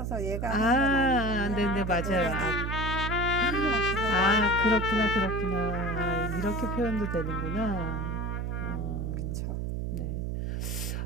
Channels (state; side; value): noise; right; hum, 2 dB below the sound